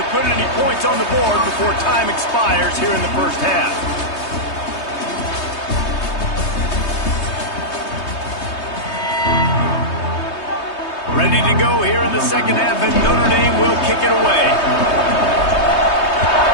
put any points on the board before time expires here in the first half. Ready to go here in the second half, and Notre Dame will kick it away.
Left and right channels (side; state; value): right; late; 3.2 ms